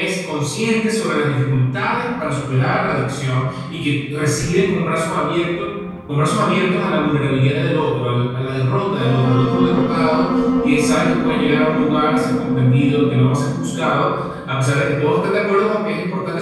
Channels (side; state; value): both; identical; correlation 1.00